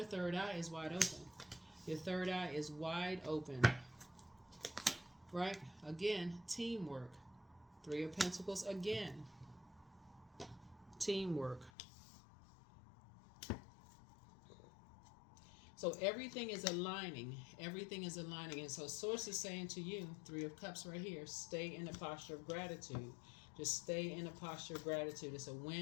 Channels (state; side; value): drops out; right; at 11.7 s